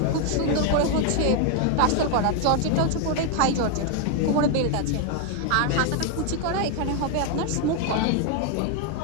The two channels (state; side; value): different; both; correlation 0.01